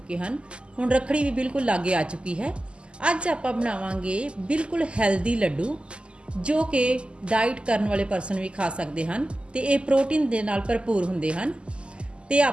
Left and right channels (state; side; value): late; left; 0.052 ms